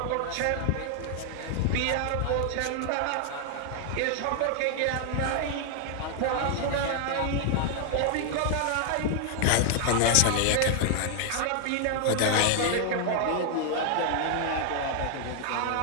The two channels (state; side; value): different; both; correlation 0.00